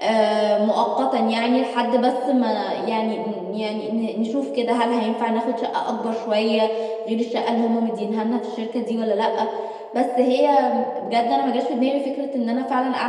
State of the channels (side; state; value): both; identical; correlation 1.00